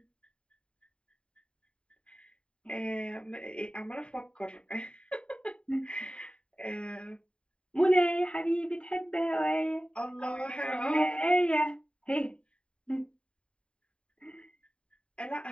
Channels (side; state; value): right; late; 0.054 ms